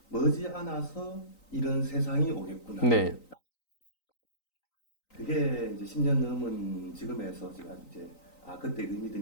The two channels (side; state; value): right; late; 3.9 ms